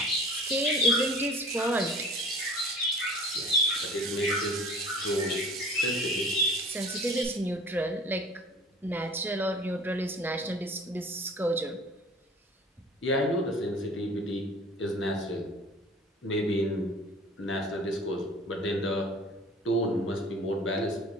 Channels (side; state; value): both; normal; correlation 0.45